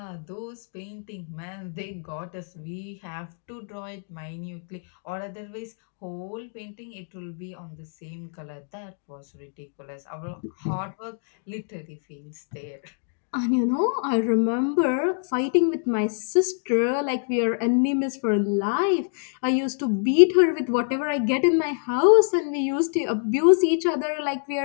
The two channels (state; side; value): silent; right; 61 dB below the other